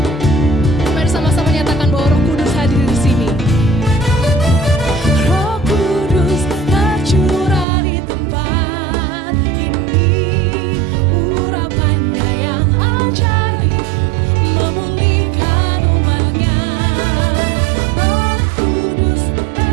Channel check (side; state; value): left; drops out; at 7.7 s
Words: Mari sama-sama nyatakan bahwa Roh Kudus hadir di sini. Roh Kudus tercurah di tempat ini. Urapannya yang ajaib memulihkan umatnya. Roh Kudus